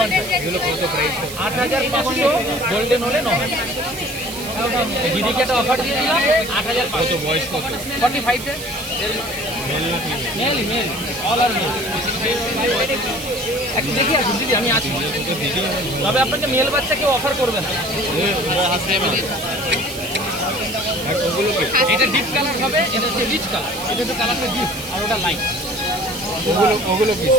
আছে। এগুলো কত প্রাইস? 8,500, গোল্ডেন হলে 9। দিদিকে একটা অফার দিয়ে দিলাম 8,500। বয়স কত? 45। মেল মেল অল আর মেল। একটু দেখি আসুন দিদি, আমি আছি। তবে আপনাকে মেল বাচ্চা কেউ অফার করবে না। এটা ডিপ কালার হবে, এটা হচ্ছে রিচ কালার। এটা হচ্ছে কালারটা ডিপ আর ওটা লাইট। ওগুলো কি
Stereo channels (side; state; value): right; noise; hiss, 11 dB below the sound